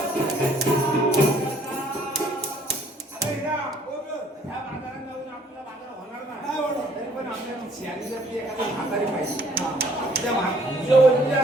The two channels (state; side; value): normal; both; correlation 0.61